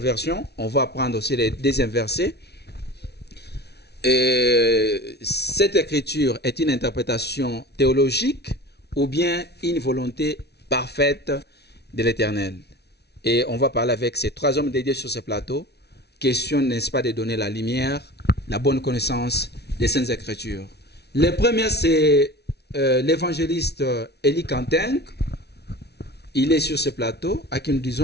on va prendre aussi les deuxièmes versets. Cette écriture est une interprétation théologique ou bien une volonté parfaite de l'Éternel. Et on va parler avec ces 3 hommes dédiés sur ce plateau. Question, n'est-ce pas, de donner la lumière, la bonne connaissance des Saintes Écritures. Le premier, c'est l'évangéliste Élie Kantenk. Il est sur ce plateau, à qui nous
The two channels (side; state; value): right; late; 0.49 ms